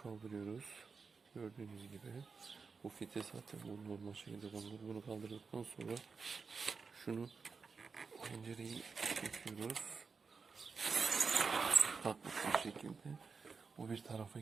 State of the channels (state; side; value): quieter; left; 5.0 dB